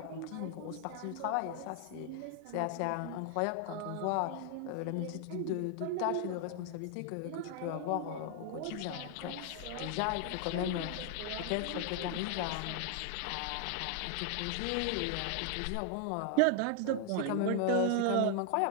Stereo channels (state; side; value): different; both; correlation 0.00